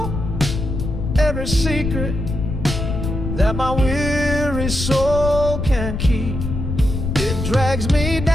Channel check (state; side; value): noise; left; rumble, 4 dB below the sound